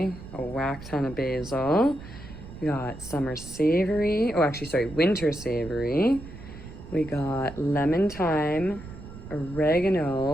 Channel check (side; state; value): right; noise; rumble, 14 dB below the sound